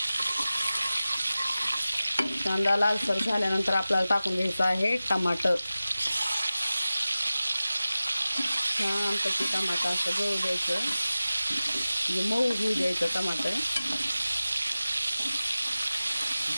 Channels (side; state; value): both; inverted; correlation -0.96